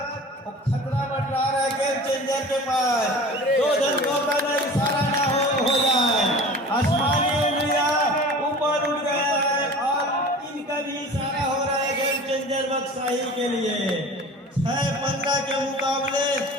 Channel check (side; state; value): both; normal; correlation 0.39